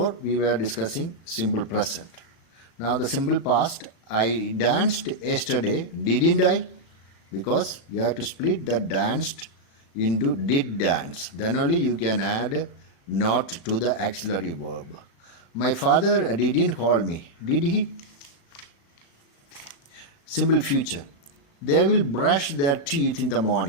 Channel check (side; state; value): right; late; 36 ms